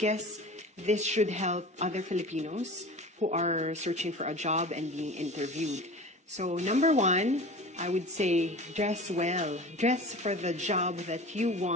this should help other Filipinos who are searching for a job and being interviewed. So number one, I would say dress well. Dress for the job that you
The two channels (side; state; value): both; normal; correlation 0.36